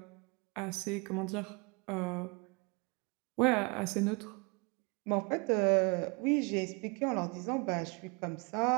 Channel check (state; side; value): quieter; left; 30.3 dB